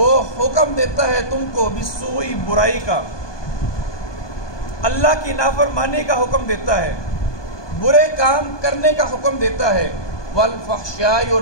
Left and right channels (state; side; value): late; right; 1.2 ms